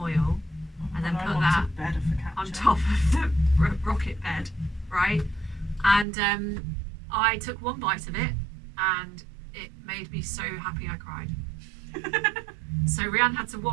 oil, and then put that on top of the rocket bed, right? And I took one bite of it, and it made me so happy I cried. So Rianne had to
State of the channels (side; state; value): left; drops out; at 6.1 s